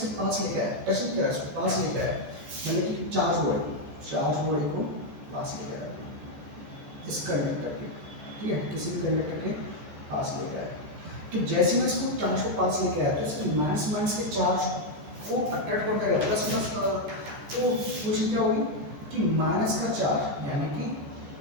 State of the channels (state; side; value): late; left; 14 ms